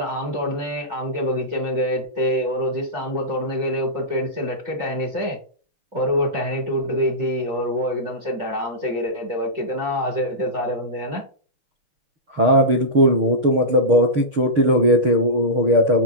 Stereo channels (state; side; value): late; left; 6.5 ms